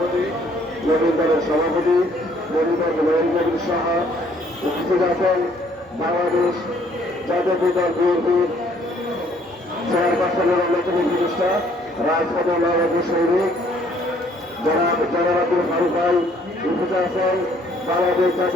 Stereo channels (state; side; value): normal; both; correlation 0.63